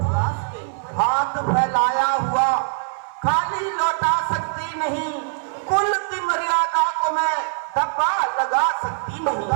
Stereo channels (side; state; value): left; silent; digital silence